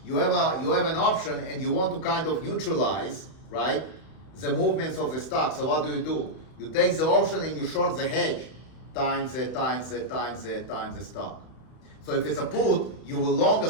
you have an option and you want to kind of neutralize, right, the movements of the stock. So what do? You take the option and you short the hedge times the stock. So if it's a put, you will long a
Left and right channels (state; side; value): late; right; 32 ms